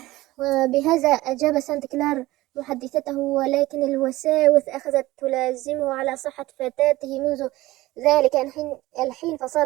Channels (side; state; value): left; quieter; 18.1 dB